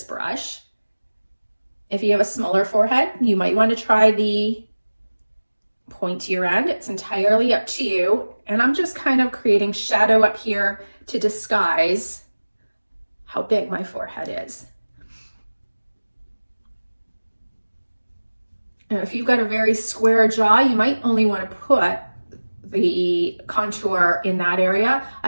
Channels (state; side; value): inverted; both; correlation -1.00